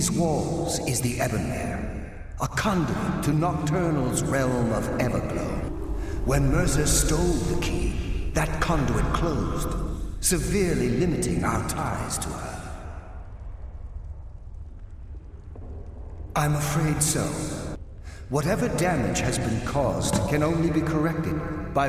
walls is the Ebonmere, a conduit to Nocturnal's realm of Everglow. When Mercer stole the key, that conduit closed, severely limiting our ties to her. I'm afraid so. Whatever damage has been caused can only be corrected by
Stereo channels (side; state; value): both; identical; correlation 1.00